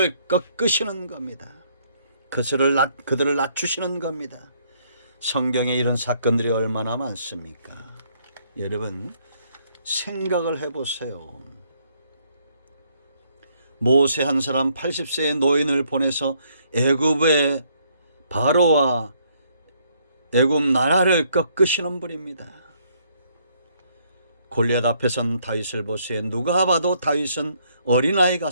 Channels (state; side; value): inverted; both; correlation -0.69